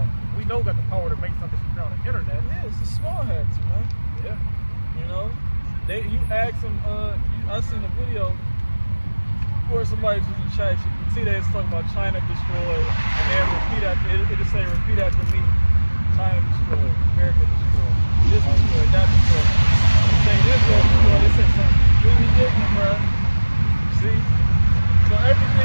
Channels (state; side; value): inverted; both; correlation -1.00